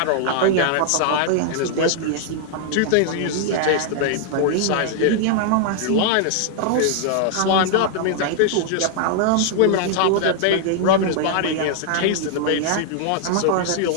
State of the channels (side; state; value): both; different; correlation -0.01